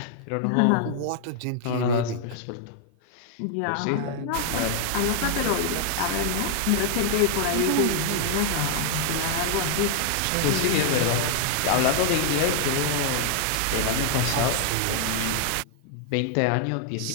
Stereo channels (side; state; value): both; different; correlation 0.00